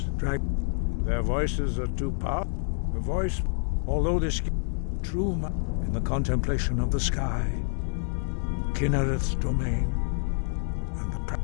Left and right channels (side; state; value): right; silent; 60 dB below the other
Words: their voices are too powerful. The voice, although this true in the contemplation of the sky, Kinnereth's domain, and the